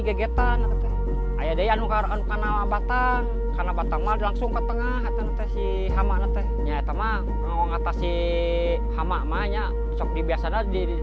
eta teh. Aya deui anu kana batang mah langsung ke tengah eta teh si hama teh. Nya eta mah ngatasi hama mah nya sok biasana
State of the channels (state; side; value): identical; both; correlation 1.00